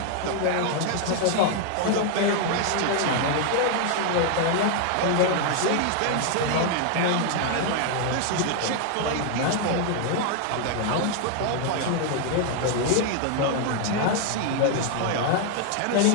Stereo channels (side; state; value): both; different; correlation 0.00